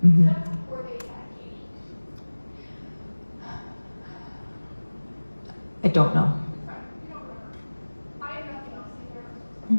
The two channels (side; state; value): both; inverted; correlation -1.00